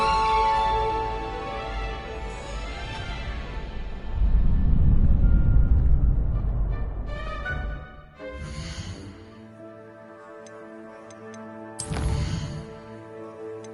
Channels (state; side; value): identical; both; correlation 1.00